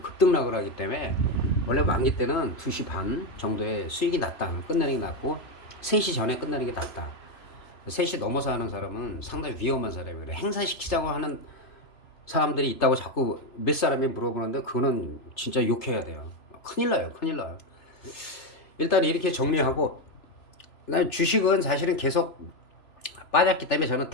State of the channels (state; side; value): late; right; 3.0 ms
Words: 급등락을 하기 때문에 원래 만기 때는 2시 반 정도에 수익이 났다. 끝내는 게 낫고 3시 전에 끝내는 게 낫다. 3시 넘어서 하는 사람은 상당히 위험한 사람이에요. 행사시키자고 하는 사람들이 있다고 자꾸 몇 사람이 물어보는데 그거는 진짜 욕해야 돼요. 큰일 나요. 큰일 나요. 일단 이렇게 정리하고 주식은 사실은 계속 빠졌기 때문에 저는